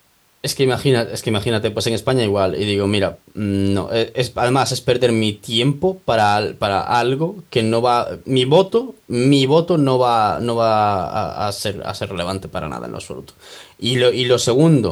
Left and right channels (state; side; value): identical; both; correlation 1.00